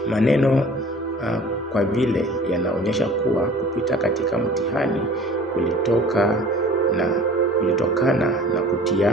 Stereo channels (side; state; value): both; normal; correlation 0.46